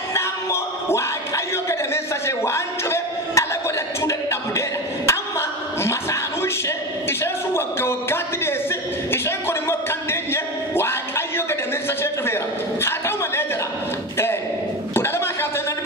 immoo Waaqayyo gadameessa ishee waan cufe ala godhachuu dadhabdeedha amma masaanuu isheen sun waggaatti deessi isheen kun immoo kan deenye Waaqayyo gadameessa ishee cufeera haa ta'u malee jedha kudha lamaa kaasee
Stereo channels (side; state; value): both; normal; correlation 0.22